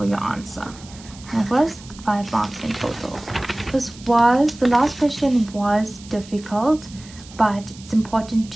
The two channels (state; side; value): noise; right; hiss, 20 dB below the sound